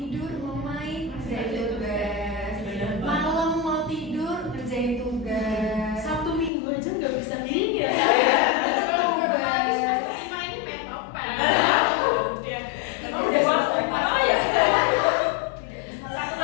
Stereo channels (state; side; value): drops out; right; at 6.5 s